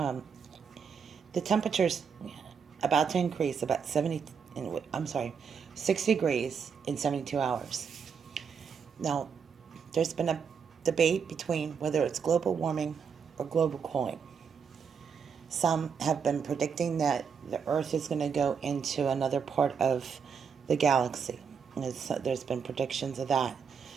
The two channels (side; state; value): left; quieter; 6.5 dB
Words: the temperature's about to increase about 6 degrees in 72 hours. Now, there's been a debate between whether it's global warming or global cooling. Some have been predicting that the Earth is going to go into another part of the galaxy. There's been predictions of that,